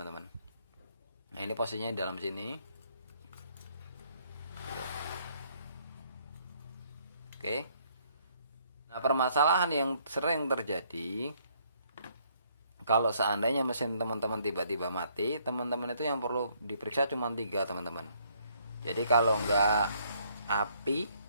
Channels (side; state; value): both; inverted; correlation -0.67